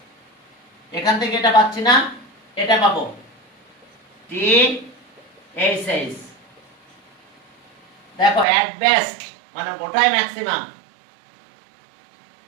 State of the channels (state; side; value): drops out; left; at 8.5 s